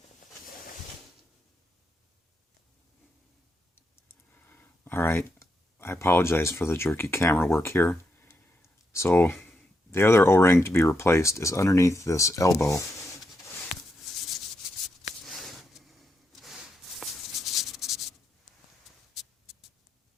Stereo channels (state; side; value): normal; both; correlation 0.82